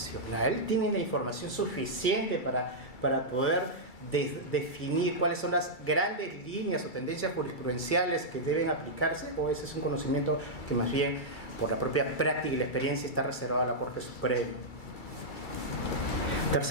¿Tienen la información suficiente para poder definir cuáles son las grandes líneas o tendencias jurisprudenciales que deben aplicarse? ¿O ese es un conocimiento que más bien, por la propia práctica y la experiencia, está reservado a la Corte Suprema?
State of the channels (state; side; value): late; right; 2.3 ms